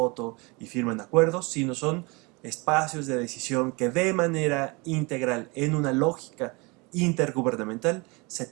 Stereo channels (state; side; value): quieter; left; 27.4 dB